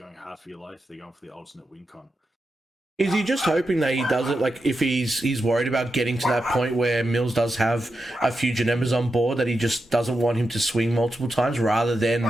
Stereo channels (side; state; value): both; normal; correlation 0.88